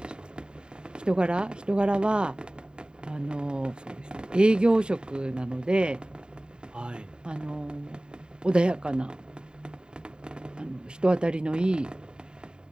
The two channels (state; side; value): late; left; 0.048 ms